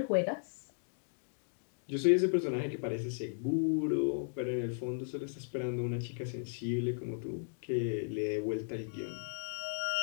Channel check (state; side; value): silent; right; digital silence